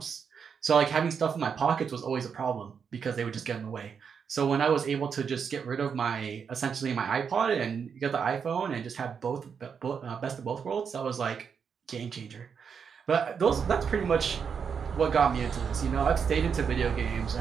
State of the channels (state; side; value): quieter; left; 6.6 dB